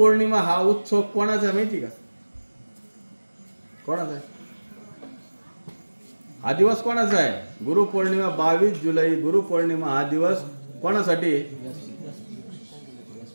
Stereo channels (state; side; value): inverted; both; correlation -1.00